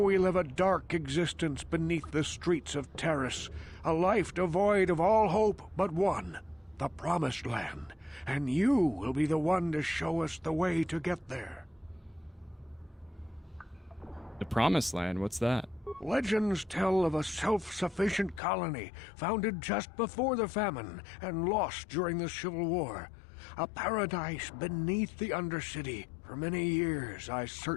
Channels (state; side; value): drops out; right; at 18.4 s